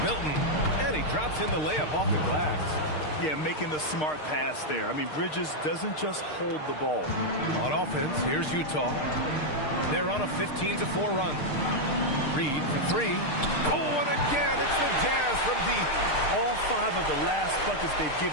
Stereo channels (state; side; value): late; right; 6.6 ms